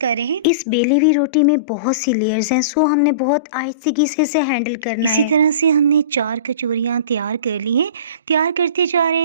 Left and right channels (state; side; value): inverted; both; correlation -0.35